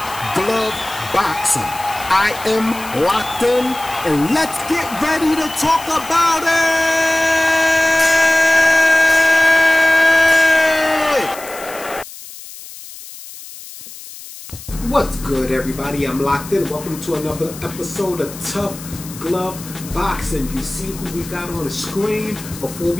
Glove Boxing. I am locked in, and let's get ready to talk about it! What's good, everybody? I'm locked in. Welcome to another episode of Tough Glove Boxing. You see who we got on the screen. Before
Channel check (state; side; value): noise; left; hiss, 15 dB below the sound